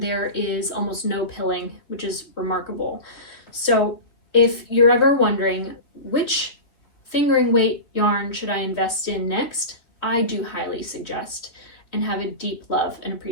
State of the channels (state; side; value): late; right; 3.0 ms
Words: there is almost no pilling, which is remarkable. So if you're ever wondering which fingering weight yarn should I invest in next, I do highly suggest and have a deep love and